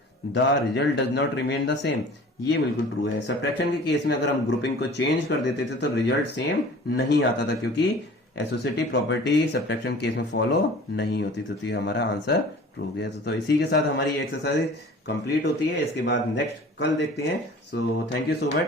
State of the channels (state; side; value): normal; both; correlation 0.45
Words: the result does not remain the same, ये बिल्कुल ट्रू है। सब्ट्रैक्शन के केस में अगर हम ग्रुपिंग को चेंज कर देते थे तो रिजल्ट सेम नहीं आता था, क्योंकि एसोसिएटिव प्रॉपर्टी सब्ट्रैक्शन केस में फॉलो नहीं होती, तो ये हमारा आंसर ट्रू गया। तो इसी के साथ हमारी एक्सरसाइज कंप्लीट होती है। इसके बाद नेक्स्ट कल देखते हैं। So thank you so